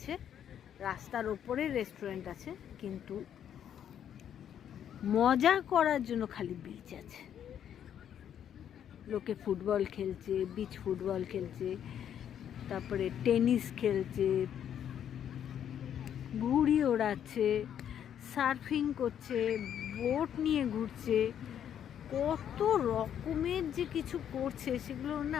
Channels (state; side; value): quieter; right; 9.5 dB